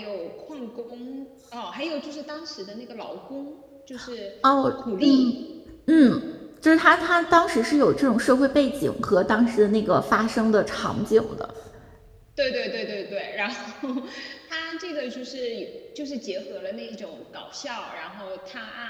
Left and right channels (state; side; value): identical; both; correlation 1.00